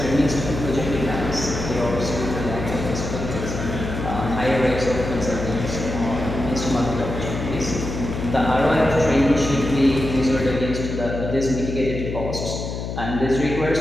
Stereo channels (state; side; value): noise; left; hum, 5 dB below the sound